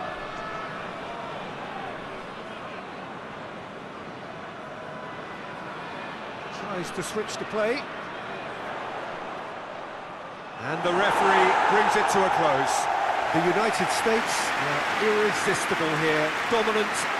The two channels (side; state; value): both; identical; correlation 1.00